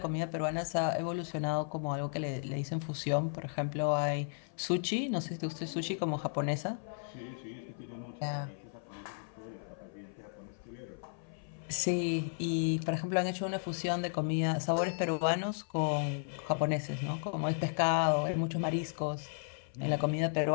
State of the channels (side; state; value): right; silent; 55 dB below the other